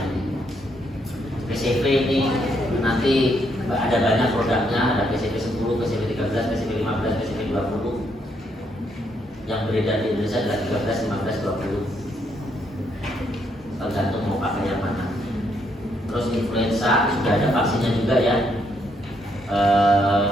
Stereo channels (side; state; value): both; normal; correlation 0.74